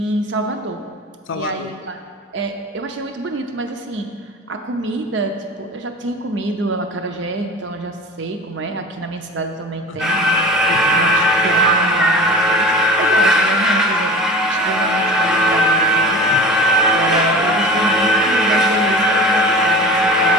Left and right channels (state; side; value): normal; both; correlation 0.37